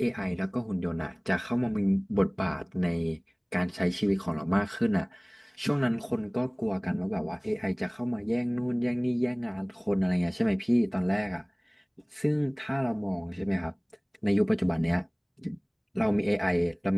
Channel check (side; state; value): both; identical; correlation 1.00